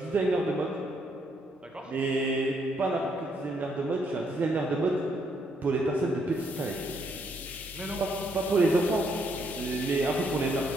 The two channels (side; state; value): both; normal; correlation 0.73